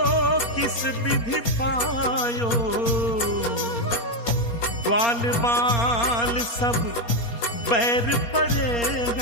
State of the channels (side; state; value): right; late; 4.3 ms